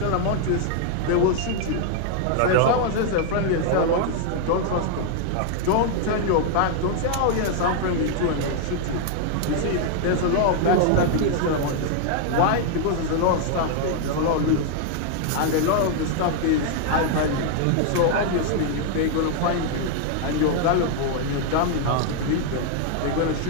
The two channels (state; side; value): different; both; correlation 0.00